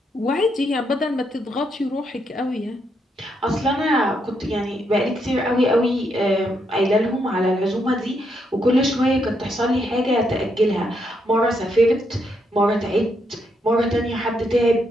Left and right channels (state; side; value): normal; both; correlation 0.78